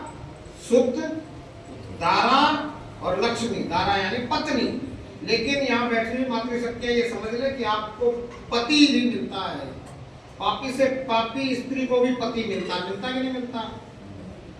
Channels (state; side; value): identical; both; correlation 1.00